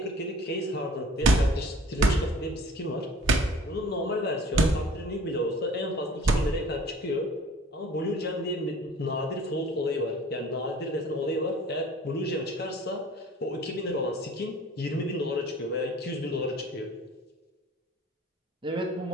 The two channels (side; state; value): both; normal; correlation 0.48